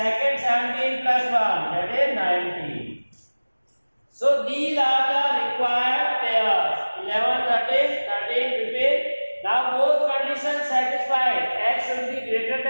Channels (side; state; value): both; inverted; correlation -1.00